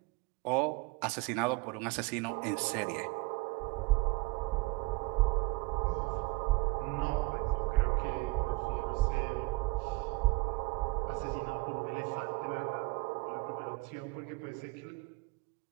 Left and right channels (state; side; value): quieter; left; 24.4 dB